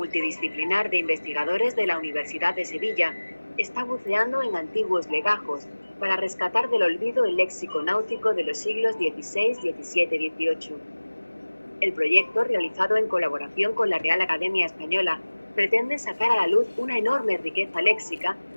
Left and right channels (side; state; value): both; inverted; correlation -1.00